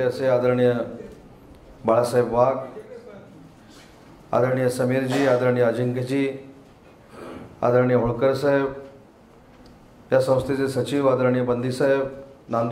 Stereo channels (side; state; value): both; identical; correlation 1.00